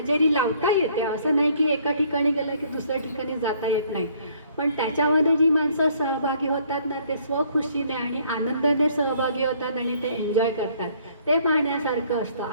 लावता येते. असं नाही की एका ठिकाणी गेलं की दुसऱ्या ठिकाणी जाता येत नाही, पण त्याच्यामध्ये जी माणसं सहभागी होतात ना ते स्वखुशीने आणि आनंदाने सहभागी होतात आणि ते एन्जॉय करतात, ते पाहण्यासारखं असतं.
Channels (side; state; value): both; inverted; correlation -0.62